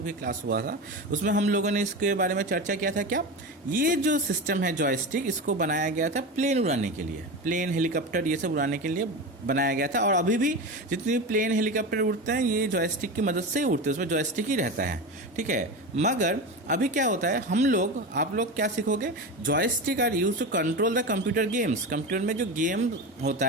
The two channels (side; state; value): both; normal; correlation 0.24